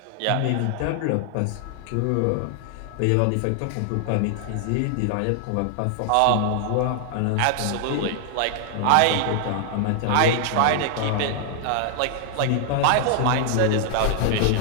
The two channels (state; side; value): different; both; correlation 0.00